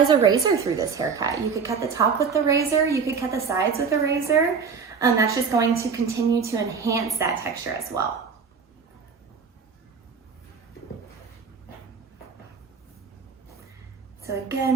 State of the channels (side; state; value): left; quieter; 5.7 dB